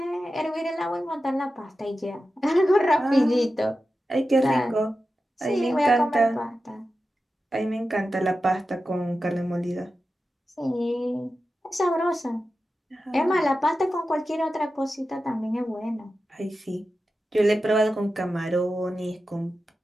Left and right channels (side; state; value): both; normal; correlation 0.92